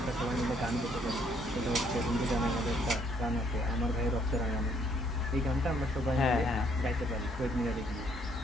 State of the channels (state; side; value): normal; both; correlation 0.67